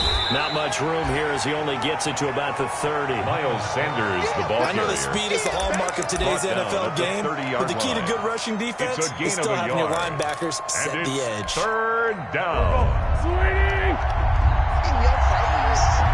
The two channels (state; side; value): identical; both; correlation 1.00